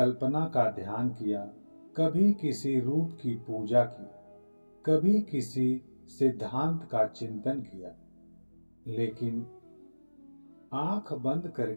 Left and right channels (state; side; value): inverted; both; correlation -1.00